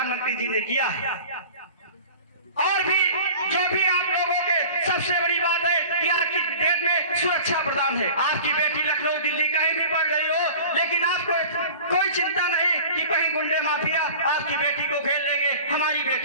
जी ने किया है। और भी जो भी आप लोगों के सबसे बड़ी बात है कि आज की डेट में सुरक्षा प्रदान है। आपकी बेटी लखनऊ दिल्ली कहीं भी पढ़ रही हो, लेकिन आपको कोई चिंता नहीं कि कहीं गुंडे माफिया आपकी बेटी को घेर लेंगे, हमारी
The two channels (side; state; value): both; inverted; correlation -0.41